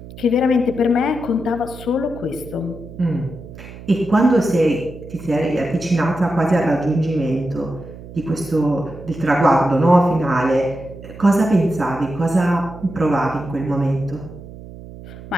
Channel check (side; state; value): right; noise; hum, 15 dB below the sound